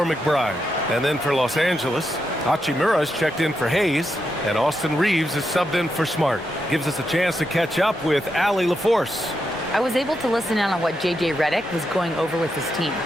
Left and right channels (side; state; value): both; normal; correlation 0.84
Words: McBride. And then for Los Angeles, Hachimura is checked in for Hayes, and Austin Reeves is subbed in for Smart. Gives us a chance to catch up with Allie LaForce. I was able to listen in on what J.J. Redick was going over with his team.